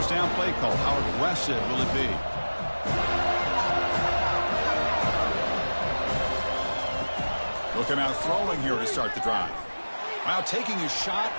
down play call. How aggressive will it be? He'll come out throwing here to start the drive. Wow, taking a shot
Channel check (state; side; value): inverted; both; correlation -1.00